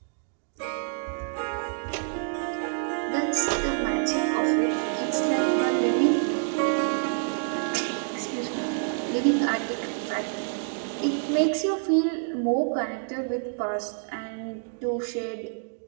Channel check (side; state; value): left; silent; digital silence